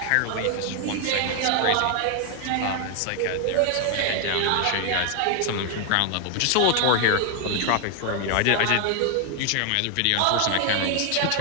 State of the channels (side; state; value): both; different; correlation 0.00